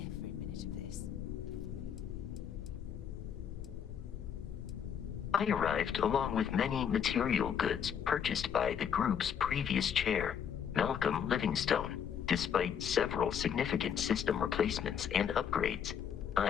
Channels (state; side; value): quieter; right; 8.1 dB